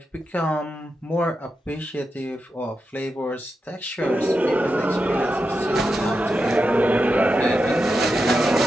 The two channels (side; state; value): both; normal; correlation 0.88